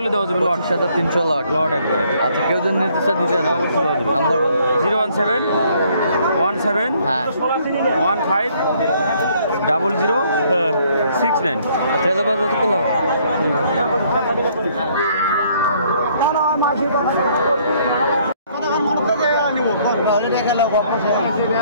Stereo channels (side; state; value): both; inverted; correlation -0.65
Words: হলে দেওয়া যাবে। লট 300 লট। লট একবারে। আচ্ছা, কেউ যদি নির্দিষ্ট দিতে নাম্বার বলো। 017 17 হ্যাঁ, 15 00 69। ট্রেলার বাস কত করলো?